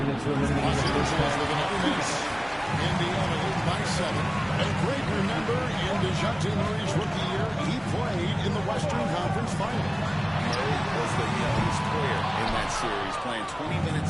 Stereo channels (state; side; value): noise; right; hum, 23 dB below the sound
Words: Los Angeles with another miss. Indiana leads by 7. A great remember in DeJounte Murray's rookie year, he played in the Western Conference Final. Murray was the youngest player in that series, playing 20